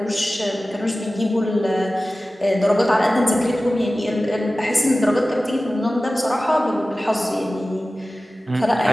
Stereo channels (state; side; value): normal; both; correlation 0.96